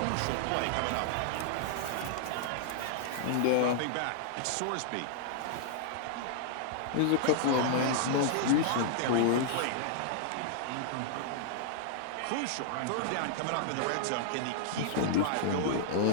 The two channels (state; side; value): different; both; correlation -0.01